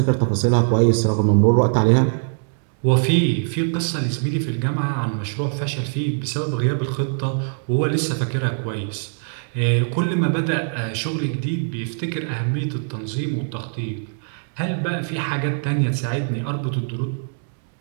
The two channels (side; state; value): left; silent; digital silence